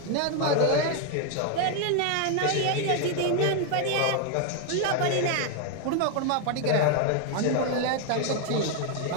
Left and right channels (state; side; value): different; both; correlation 0.01